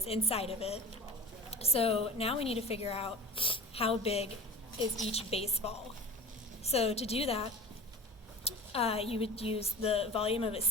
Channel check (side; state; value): both; normal; correlation 0.35